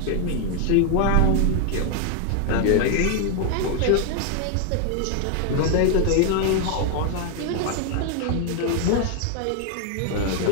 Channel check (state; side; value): different; both; correlation 0.00